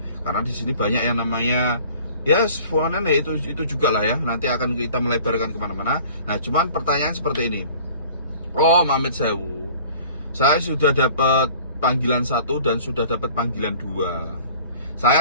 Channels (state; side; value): inverted; both; correlation -0.48